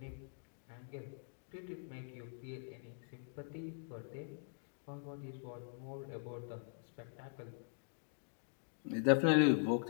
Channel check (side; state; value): right; silent; digital silence